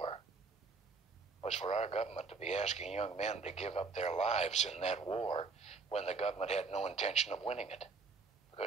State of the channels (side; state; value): left; quieter; 4.4 dB